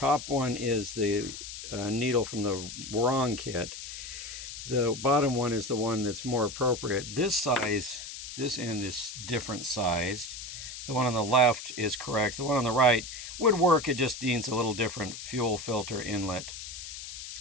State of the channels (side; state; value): left; noise; hiss, 10 dB below the sound